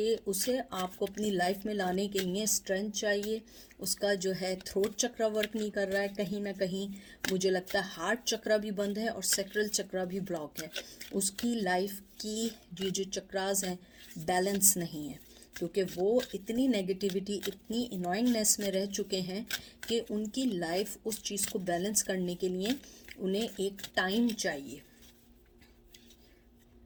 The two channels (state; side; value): identical; both; correlation 1.00